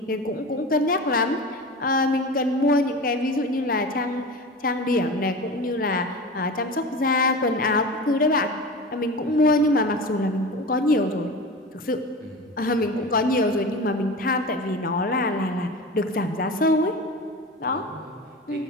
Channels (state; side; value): normal; both; correlation 0.31